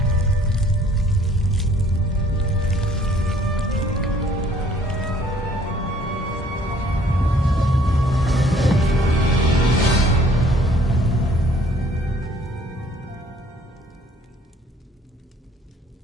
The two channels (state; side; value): normal; both; correlation 0.59